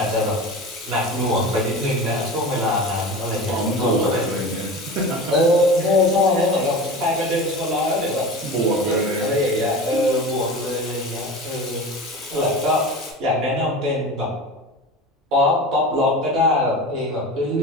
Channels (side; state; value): both; normal; correlation 0.32